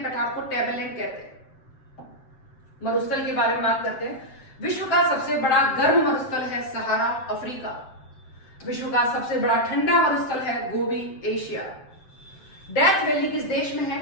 को टेबललैंड कहते हैं। मरुस्थल के बारे में बात करते हैं। विश्व का सबसे बड़ा गर्म मरुस्थल है सहारा, अफ्रीका। विश्व का सबसे बड़ा ठंडा मरुस्थल है गोबी, एशिया। डेथ वैली किस देश में है?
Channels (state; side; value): late; right; 7.6 ms